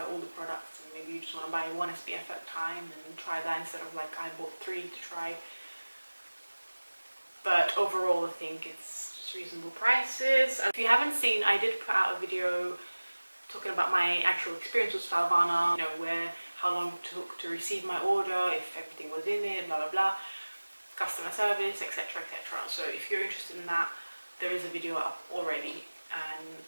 all the products, and maybe you just want to buy 1 SPF at a time and try that instead of like I bought 3 to try. But overall, I think it's just reasonable prices. If you haven't seen, I did put out a video talking about my actual experience with Stylevana, you know, how long it took to receive my order, if everything was in it, blah blah blah, customer service, etc, etc. So if you're interested in that, there is a video up already, and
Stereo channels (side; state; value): both; inverted; correlation -1.00